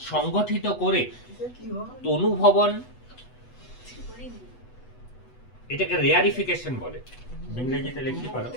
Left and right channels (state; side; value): late; right; 8.1 ms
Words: সংগঠিত করে, তনুভবন এটাকে রেয়ারিফিকেশন বলে, ইংরেজিতে লিখতে পারো